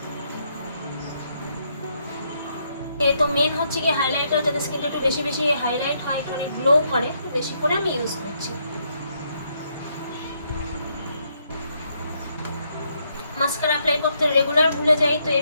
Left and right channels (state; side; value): inverted; both; correlation -0.75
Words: তো মেন হচ্ছে কি হাইলাইটার, যাতে স্কিনটা একটু বেশি বেশি হাইলাইট হয়, একটু গ্লো করে, বেশি করে আমি ইউজ করছি। মাস্কারা অ্যাপ্লাই করতে রেগুলার ভুলে যাই, তো